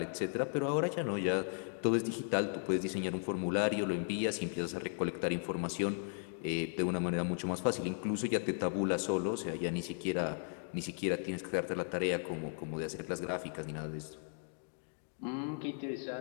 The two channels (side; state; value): right; silent; 54 dB below the other